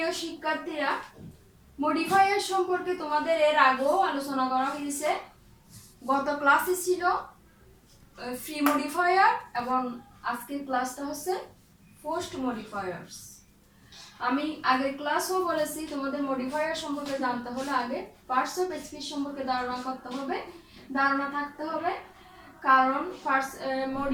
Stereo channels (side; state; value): both; identical; correlation 1.00